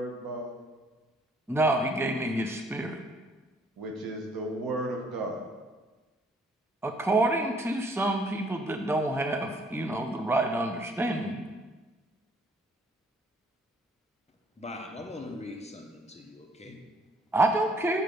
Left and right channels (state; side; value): normal; both; correlation 0.63